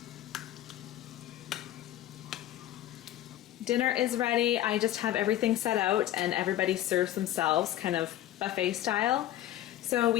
Dinner is ready. I just have everything set out and everybody serves themselves kind of buffet style. So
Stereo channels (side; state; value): right; quieter; 13.4 dB